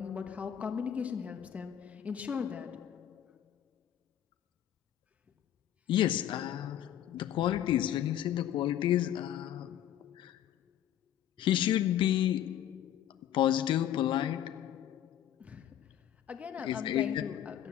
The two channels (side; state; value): right; quieter; 11.0 dB